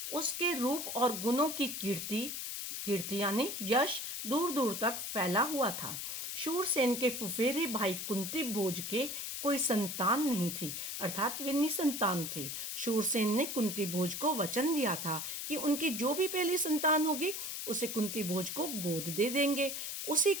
उसके रूप और गुणों की कीर्ति कीर्ति यानी यश दूर दूर तक फैला हुआ था। शूरसेन के फुफेरे भाई कुंती भोज के कोई संतान नहीं थी, अर्थात वे निसंतान थे। शूरसेन ने कुंती भोज को वचन दिया था कि उनकी जो भी पहली संतान होगी उसे कुंती भोज को गोद दे देंगे। उसी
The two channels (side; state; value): left; noise; hiss, 5 dB below the sound